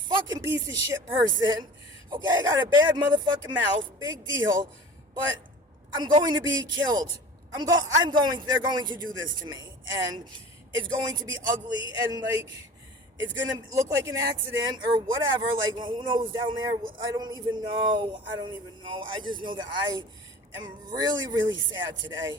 piece of shit person. Okay, I got a bad motherfucking mouth, big deal, but I'm going to be killed. They're going to do this to me, and it's going to be ugly, and like, it's going to look like an accident or whatever. Like, well, who knows down there? I don't even know. I just know that I am really, really sad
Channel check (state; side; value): normal; both; correlation 0.40